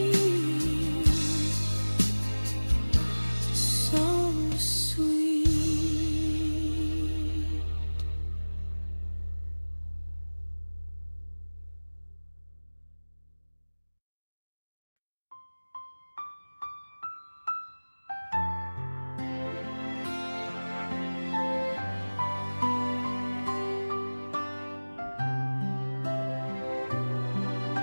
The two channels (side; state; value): both; inverted; correlation -1.00